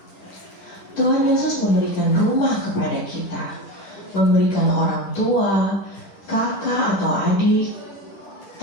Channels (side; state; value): right; late; 10 ms